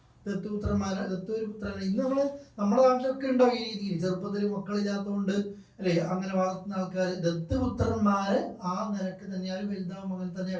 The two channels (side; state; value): both; identical; correlation 1.00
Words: ദത്തൊരു പുത്രനാണ്. ഇന്ന് നമ്മുടെ നാട്ടിലൊക്കെ ഉണ്ടാവും ഈ രീതിയിൽ. ചെറുപ്പത്തിൽ മക്കളില്ലാത്തതുകൊണ്ട് അല്ലെ അങ്ങനെ വളർത്തുന്ന ആൾക്കാർ ദത്തുപുത്രന്മാരെ ആ നിരക്ക് തന്നെയാണ് വലുതാവും അങ്ങനെ